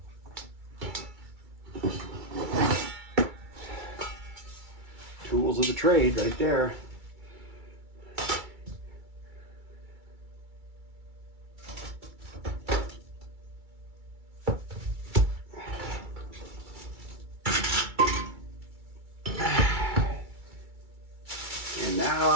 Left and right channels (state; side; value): late; left; 2.3 ms